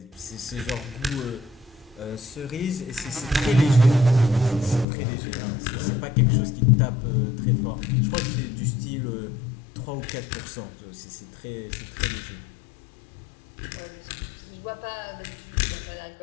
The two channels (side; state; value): right; drops out; at 4.9 s